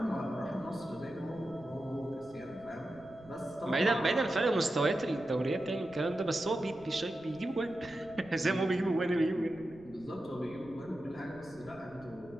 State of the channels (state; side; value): noise; right; rumble, 24 dB below the sound